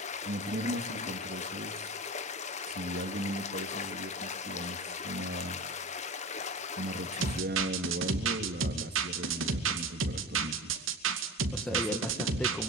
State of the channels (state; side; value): normal; both; correlation 0.31